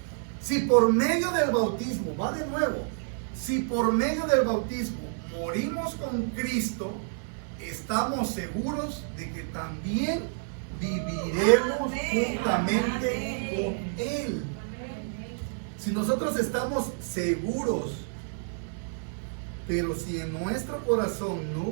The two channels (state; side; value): silent; left; digital silence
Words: Si por medio del bautismo, va de nuevo, si por medio del bautismo morimos con Cristo, estamos seguros de que también viviremos juntamente con Él. Si nosotros estamos seguros, pero si en nuestro corazón no